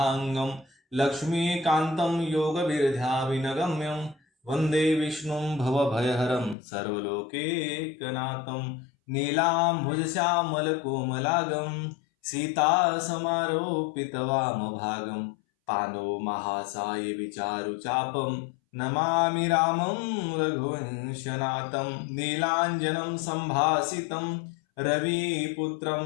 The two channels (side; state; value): right; drops out; at 6.6 s